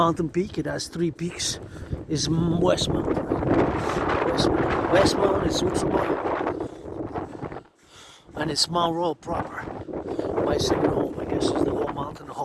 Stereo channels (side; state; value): both; identical; correlation 1.00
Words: peak, it has 3 peaks, is Westmount. Westmount is Switzerland, and it's Mount Royal proper. My second home, I guess, is the whole mountain, the